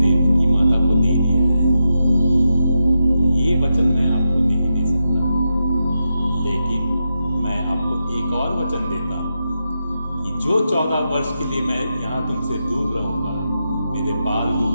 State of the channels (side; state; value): both; inverted; correlation -0.87